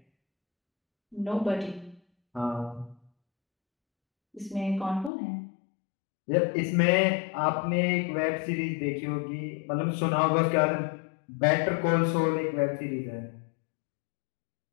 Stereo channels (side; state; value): right; drops out; at 5.1 s